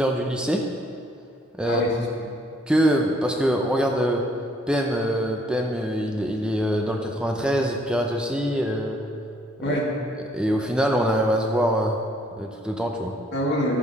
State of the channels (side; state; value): both; normal; correlation 0.65